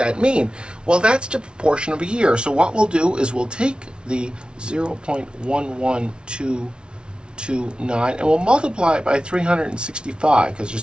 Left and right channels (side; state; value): left; late; 0.056 ms